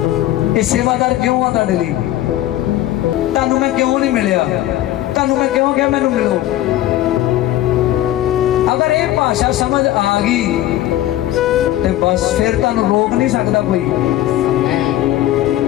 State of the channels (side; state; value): right; quieter; 13.9 dB